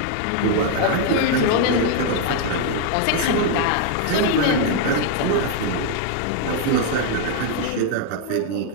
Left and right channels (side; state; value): both; different; correlation 0.00